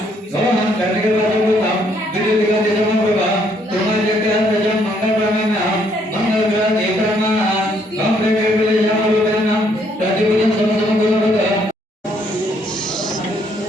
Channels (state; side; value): normal; both; correlation 0.69